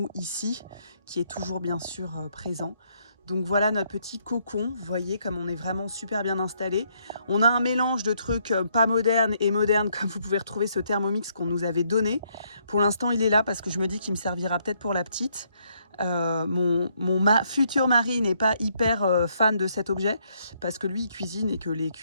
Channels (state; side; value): inverted; both; correlation -0.72